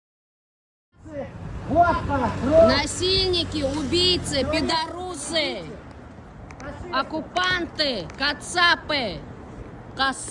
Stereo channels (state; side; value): identical; both; correlation 1.00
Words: Насильники, убийцы, пидорусы, оккупанты, кацапы,